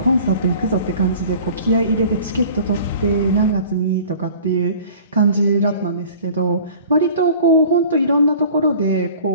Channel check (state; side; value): inverted; both; correlation -0.46